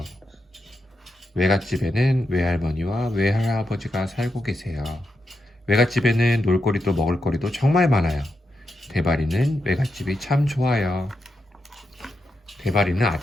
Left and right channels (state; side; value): normal; both; correlation 0.85